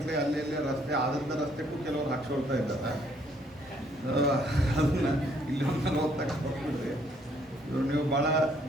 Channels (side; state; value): both; normal; correlation 0.66